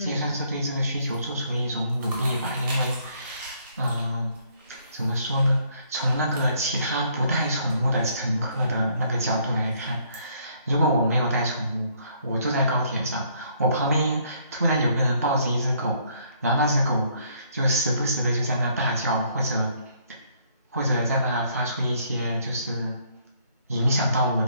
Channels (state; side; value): inverted; both; correlation -0.66